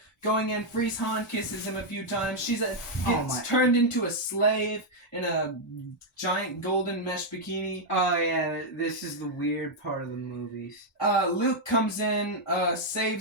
going in, frees Han, kisses him a few times. She gets turned into a slave in a giant golden mesh bikini. Oh, yeah, this is the weird part of the movies. Luke comes in,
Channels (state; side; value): normal; both; correlation -0.02